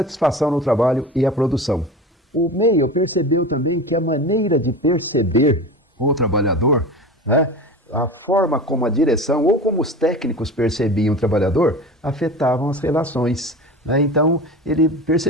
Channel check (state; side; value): normal; both; correlation 0.32